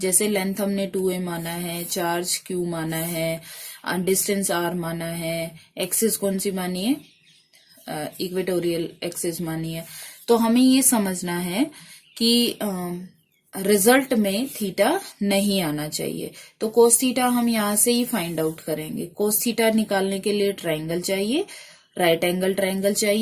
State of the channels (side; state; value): both; identical; correlation 1.00